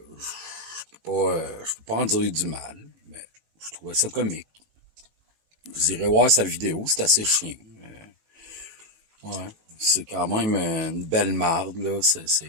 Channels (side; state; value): left; late; 18 ms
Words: je peux pas en dire du mal, mais je trouvais ça comique. Vous irez voir sa vidéo, c'est assez chiant. Ouais, c'est quand même une belle marde, là.